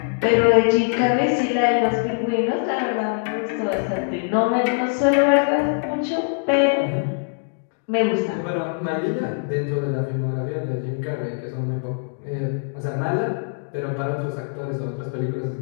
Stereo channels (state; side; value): silent; right; digital silence